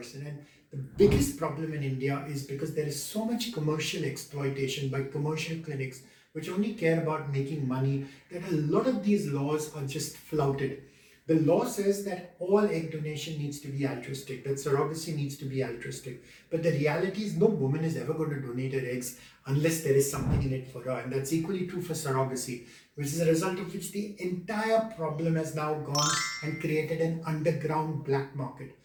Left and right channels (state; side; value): identical; both; correlation 1.00